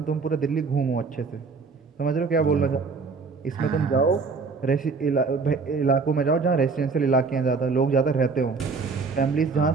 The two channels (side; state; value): left; quieter; 4.6 dB